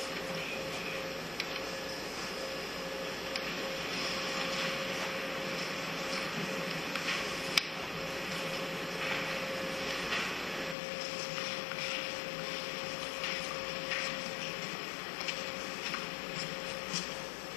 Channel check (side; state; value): right; drops out; at 10.8 s